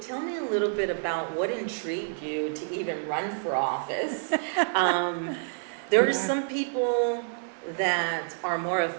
me a little bit about what intrigued you to even run for office. There are some people that are more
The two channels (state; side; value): silent; left; 59 dB below the other